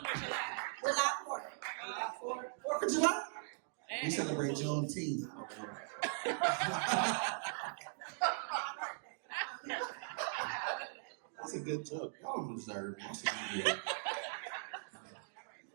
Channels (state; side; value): silent; left; digital silence